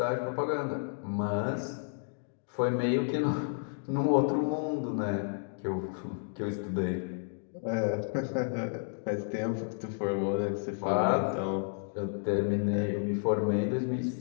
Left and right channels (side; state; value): right; silent; digital silence